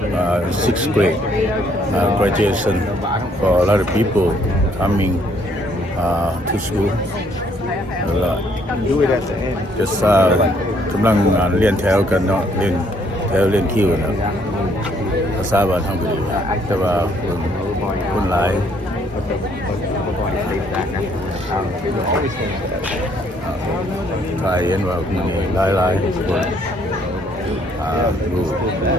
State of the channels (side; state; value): both; normal; correlation 0.66